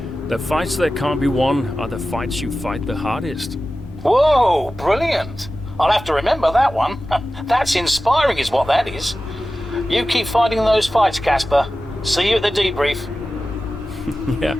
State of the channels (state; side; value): normal; both; correlation 0.95